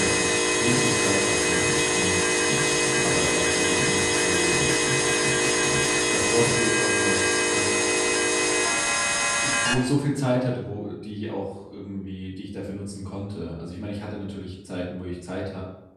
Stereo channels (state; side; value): identical; both; correlation 1.00